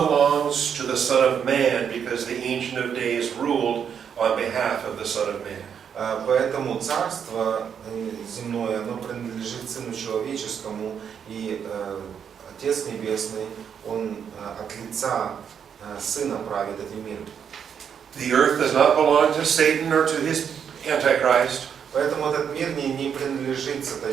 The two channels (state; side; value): quieter; left; 7.7 dB